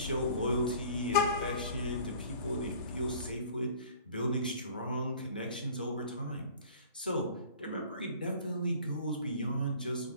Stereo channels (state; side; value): inverted; both; correlation -0.48